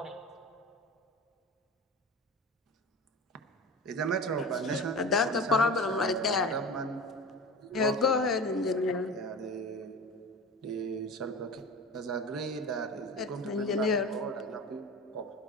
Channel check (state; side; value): normal; both; correlation 0.32